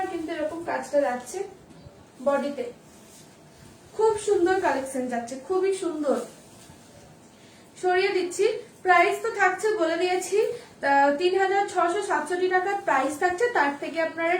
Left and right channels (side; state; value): both; identical; correlation 1.00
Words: কিন্তু এরকম কাজটা যাচ্ছে বডিতে। খুব সুন্দর কালেকশন যাচ্ছে, খুবই সুন্দর। সরিয়ে দিচ্ছি, প্রাইস তো থাকছে বলে দিয়েছি 3667 টাকা প্রাইস থাকছে। তার থেকে আপনারা